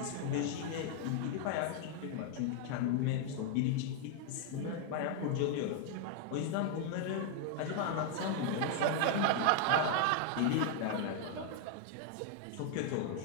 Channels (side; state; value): both; different; correlation 0.00